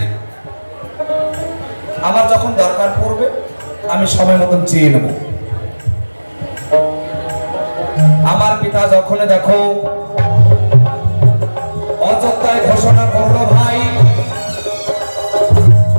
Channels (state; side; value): inverted; both; correlation -1.00